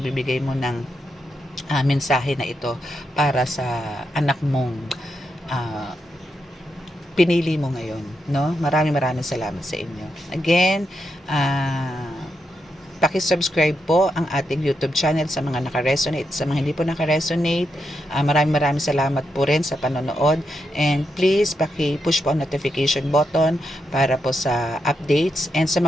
mo ng mensahe na ito para sa anak mong pinili mo ngayon, no? Maraming salamat sa inyo. Again, paki-subscribe po ang ating YouTube channel sa mga naka-resonate. Sa mga hindi po naka-resonate, maraming salamat po rin sa panonood. And please, paki-push po ang notification button para po sa updates. And sa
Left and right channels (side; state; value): both; normal; correlation 0.84